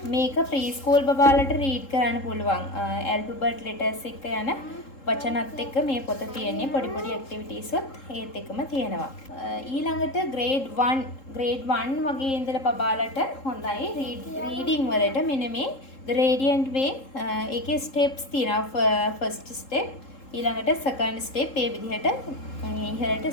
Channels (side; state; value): right; late; 3.7 ms